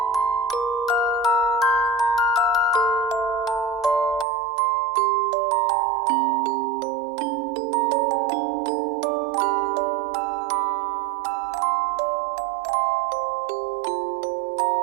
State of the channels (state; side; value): drops out; left; at 4.2 s